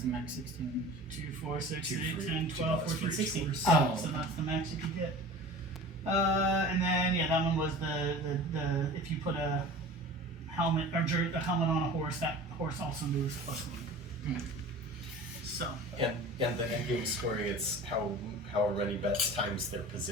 the max 16? 2, 4, 6, Two 8, for- 10, 12, $2 for 14, each 16. horse. Oh. So that's the max you could get. And then that one was the if you put a helmet or a helmet on a horse, that horse also moves +1. So And the end game scoring, it's however many bets times their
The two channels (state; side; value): normal; both; correlation 0.39